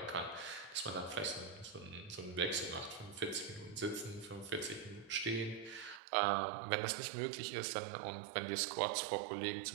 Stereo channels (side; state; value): left; drops out; at 6.0 s